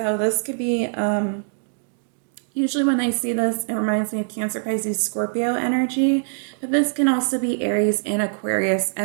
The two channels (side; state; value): left; silent; digital silence